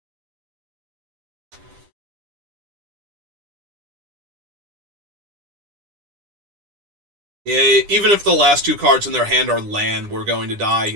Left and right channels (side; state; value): left; late; 10 ms